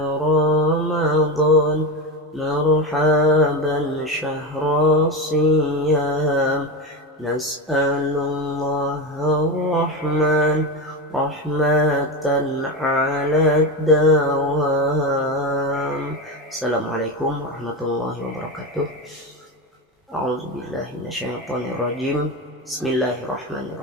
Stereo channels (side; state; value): both; normal; correlation 0.18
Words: رمضان مرحبا شهر الصيام نسأل الله الرحمن رحمة على الدوام. Assalamualaikum warahmatullahi wabarakatuh. A'udzubillahi minasyaitonirrajim.